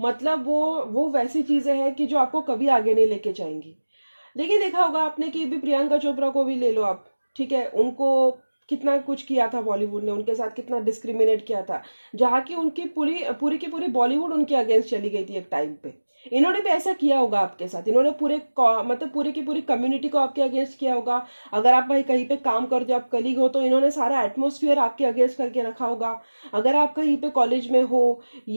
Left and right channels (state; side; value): inverted; both; correlation -1.00